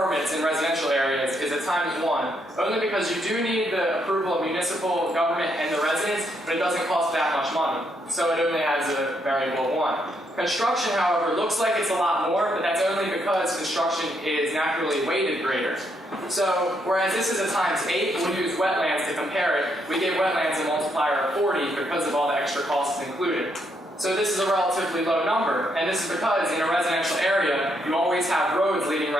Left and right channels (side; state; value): both; normal; correlation 0.76